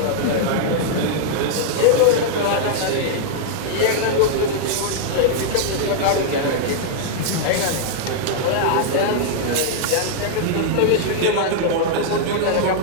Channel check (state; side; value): different; both; correlation -0.01